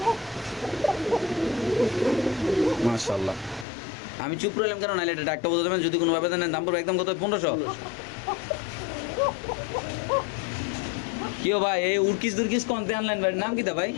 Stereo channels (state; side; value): drops out; right; at 3.7 s